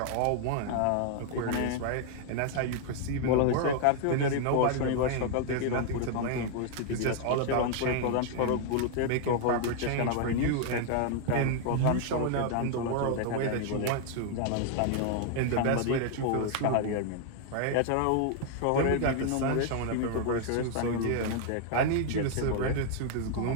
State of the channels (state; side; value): different; both; correlation 0.00